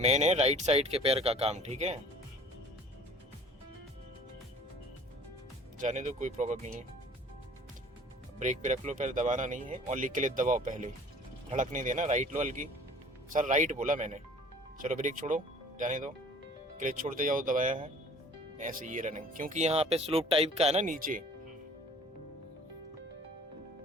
है राइट साइड के पैर का काम, ठीक है। जाने दो, कोई प्रॉब्लम नहीं है। ब्रेक पे रख लो, पैर दबाना नहीं है। ओनली क्लच दबाओ पहले, धड़क नहीं देना। राइट लो हल्की। सर राइट बोला मैंने। चलो ब्रेक छोड़ो, जाने दो। क्लच छोड़ते जाओ, दबाया है ऐसे ये रनिंग, क्योंकि यहाँ पे स्लोप टाइप का है ना नीचे।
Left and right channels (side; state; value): both; normal; correlation 0.50